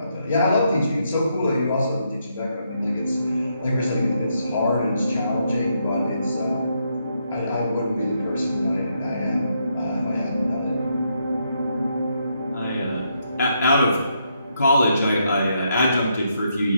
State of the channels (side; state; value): both; inverted; correlation -0.78